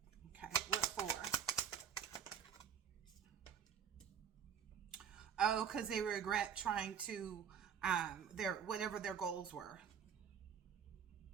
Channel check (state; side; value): quieter; left; 7.9 dB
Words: Okay, what for? Oh, because they regret trying to whatever their goals were.